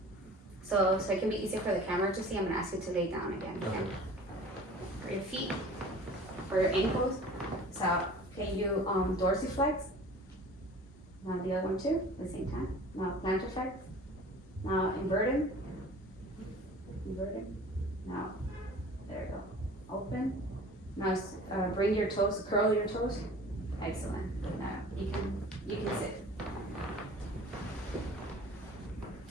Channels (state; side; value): normal; both; correlation 0.44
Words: So it can be easier for the camera to see, I'm gonna ask you to lay down again. Okay? Okay. For your feet, for your ankles. So can you dorsiflex? Now the other one too, at the same time. Now plantarflex. Now inverted. Inverted. Now, there you go. Open. Now bring your toes, curl your toes. Excellent. Now you can sit.